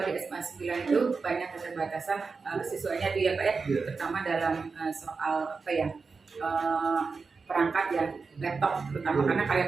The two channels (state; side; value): quieter; left; 4.7 dB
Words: SMA 9 itu banyak keterbatasan siswanya dia Pak ya, terutama dalam soal perangkat ya, laptop terutama, karena karya